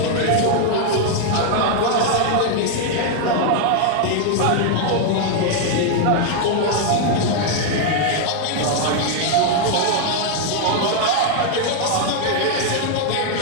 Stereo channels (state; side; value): different; both; correlation 0.00